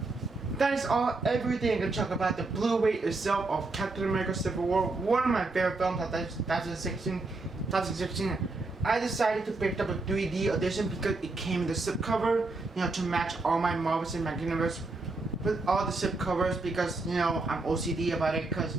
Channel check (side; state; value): left; quieter; 3.4 dB